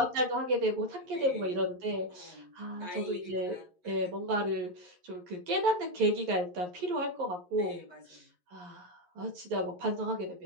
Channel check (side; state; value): left; late; 11 ms